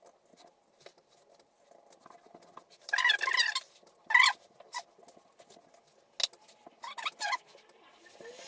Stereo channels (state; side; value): identical; both; correlation 1.00